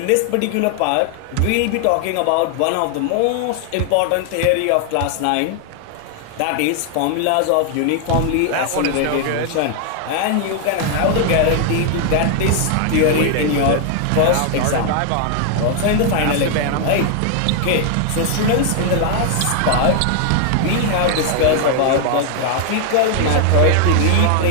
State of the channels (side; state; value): both; different; correlation 0.00